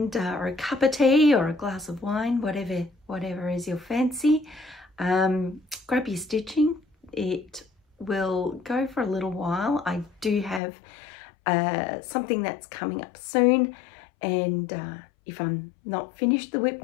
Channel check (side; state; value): right; drops out; at 10.6 s